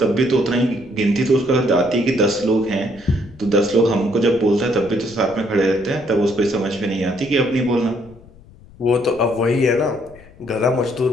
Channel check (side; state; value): left; noise; rumble, 23 dB below the sound